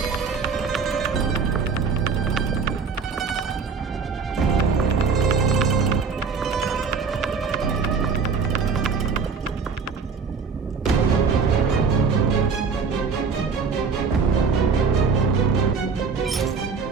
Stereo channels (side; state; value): left; quieter; 5.3 dB